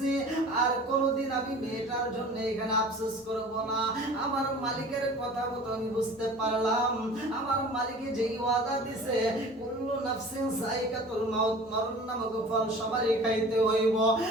আর কোনোদিন আমি মেয়েটার জন্য এখানে আফসোস করব না। আমার মালিকের কথা মতো আমি বুঝতে পারলাম, আমার মালিকে যেই ওয়াদা দিছে কুল্লু নাফসিন যায়কাতুল মাউত, মরণ নামক ফল সবারই খাইতে হইব,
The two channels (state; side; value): normal; both; correlation 0.42